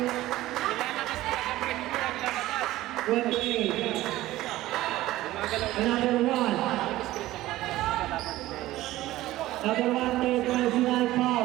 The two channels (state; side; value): quieter; left; 16.2 dB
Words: 28. Number 1. Number 1, third personal